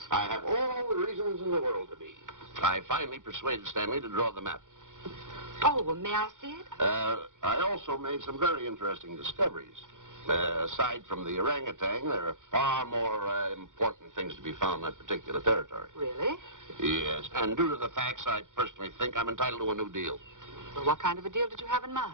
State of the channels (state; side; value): late; left; 0.87 ms